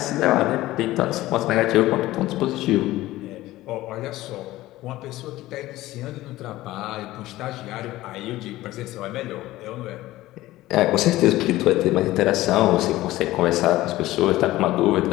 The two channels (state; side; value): quieter; right; 16.8 dB